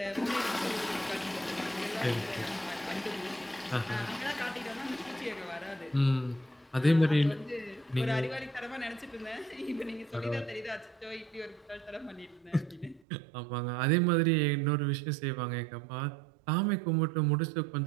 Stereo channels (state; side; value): drops out; left; at 13.0 s